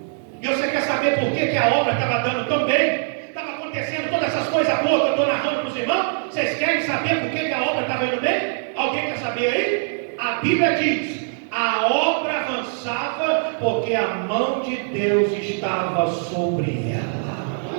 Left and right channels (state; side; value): silent; left; digital silence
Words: E você quer saber por que a obra estava dando tão bem? Estava acontecendo todas essas coisas boas que eu estou narrando para os irmãos? Vocês querem saber por que a obra estava indo bem? Alguém quer saber aí? A Bíblia diz, a obra avançava porque a mão de Deus estava sobre ela.